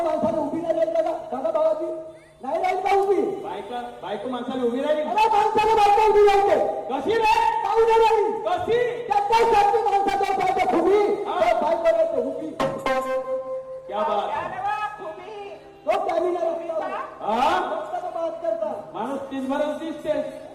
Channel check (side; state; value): both; identical; correlation 1.00